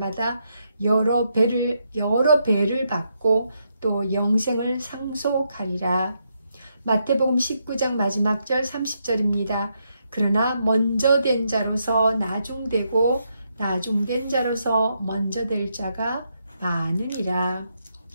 여러 배를 받고 또 영생을 상속하리라. 마태복음 19장 마지막 절 30절입니다. 그러나 먼저 된 자로서 나중되고 나중된 자로서 먼저 될 자가 많으니라.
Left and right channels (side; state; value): both; inverted; correlation -0.80